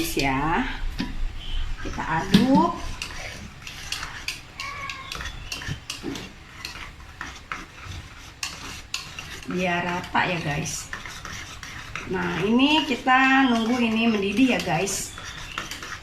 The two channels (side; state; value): both; identical; correlation 1.00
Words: ya. Kita aduk. Biar rata ya guys. Nah ini kita nunggu ini mendidih ya guys.